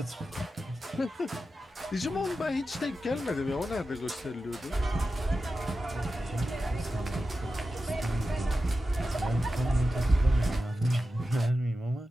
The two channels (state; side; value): normal; both; correlation 0.92